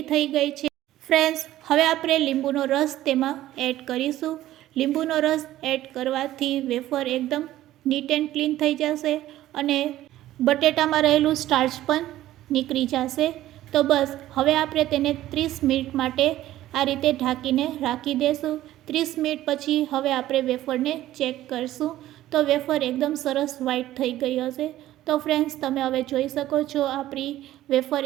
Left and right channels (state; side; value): quieter; left; 14.3 dB